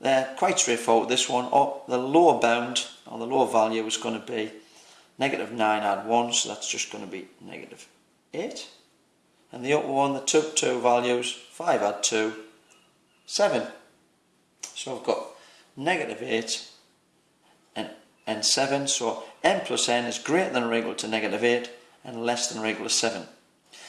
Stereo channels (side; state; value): both; identical; correlation 1.00